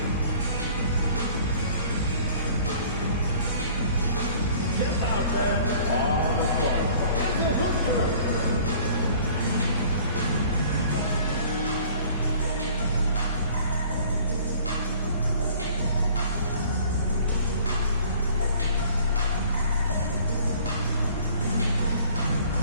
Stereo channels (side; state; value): both; inverted; correlation -0.52